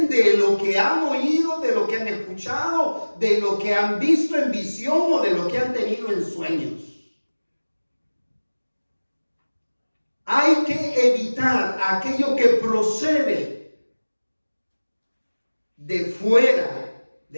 de lo que han oído, de lo que han escuchado, de lo que han visto en visión o de lo que han tenido en sueños. Hay que evitar aquello que procede de fuera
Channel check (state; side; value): inverted; both; correlation -1.00